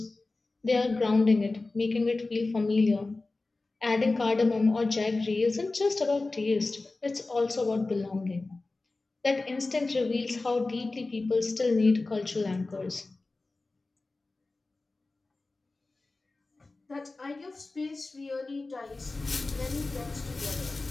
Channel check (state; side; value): quieter; right; 3.3 dB